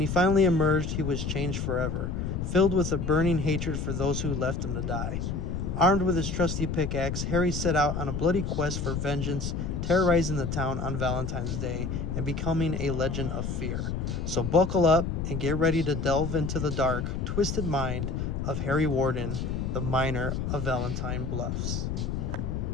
finally emerged, he was changed forever, filled with a burning hatred for those who left him to die. Armed with his trusty pickaxe, Harry set out on a bloody quest for vengeance, terrorizing the town on Valentine's Day and becoming a legend of fear. So buckle up and get ready to delve into the dark, twisted mind of Harry Warden, the miner of Valentine Bluffs.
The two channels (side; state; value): left; noise; rumble, 2 dB below the sound